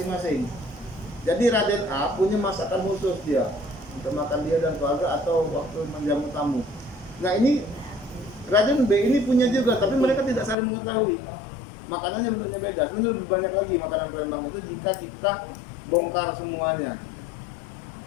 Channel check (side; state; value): right; drops out; at 10.6 s